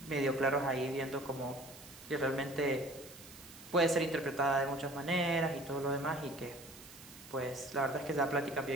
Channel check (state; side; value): noise; right; hiss, 17 dB below the sound